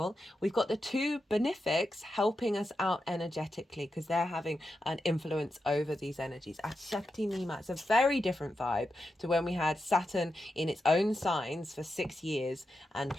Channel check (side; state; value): both; normal; correlation 0.88